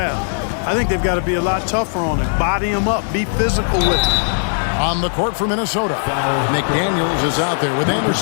I think they've got to be a lot tougher on him. Body him up. Be physical with him. On the court for Minnesota, McDaniels is out there with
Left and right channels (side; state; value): right; silent; digital silence